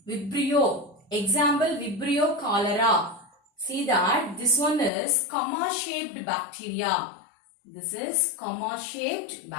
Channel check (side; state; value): right; drops out; at 4.9 s